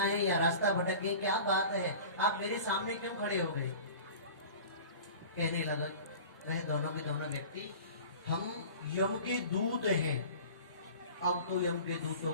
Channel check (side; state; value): both; inverted; correlation -0.39